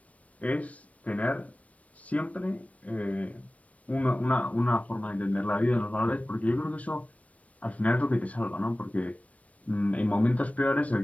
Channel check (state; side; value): late; right; 0.066 ms